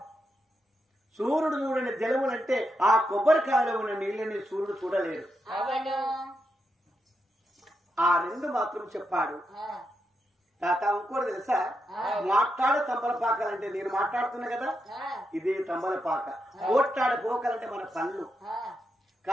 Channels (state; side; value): normal; both; correlation 0.84